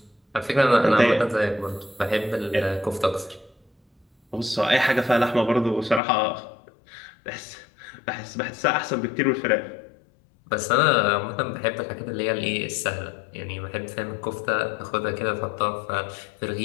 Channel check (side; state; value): right; drops out; at 6.0 s